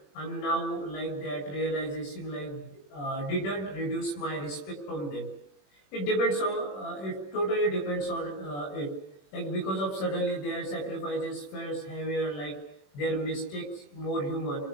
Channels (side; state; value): right; late; 21 ms